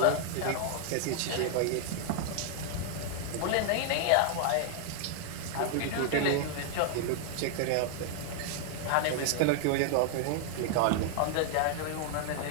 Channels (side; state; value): both; different; correlation 0.00